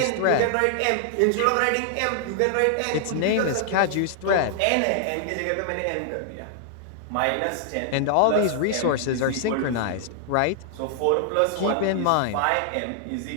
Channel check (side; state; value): both; different; correlation -0.01